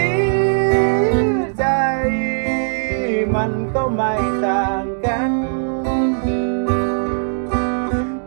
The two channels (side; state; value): left; silent; digital silence